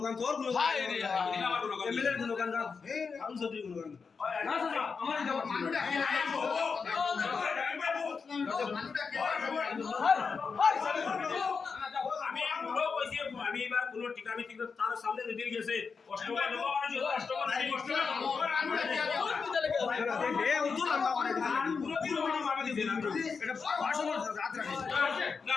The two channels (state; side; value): quieter; right; 5.3 dB